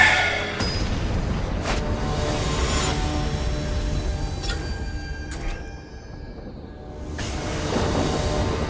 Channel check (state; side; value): identical; both; correlation 1.00